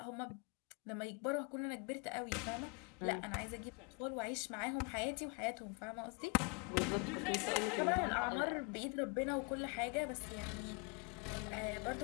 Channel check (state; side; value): quieter; right; 31.2 dB